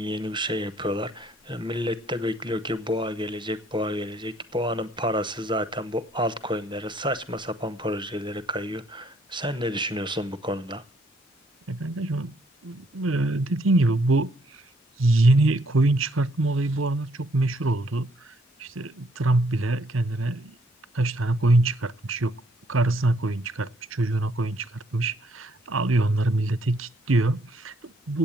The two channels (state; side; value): normal; both; correlation 0.67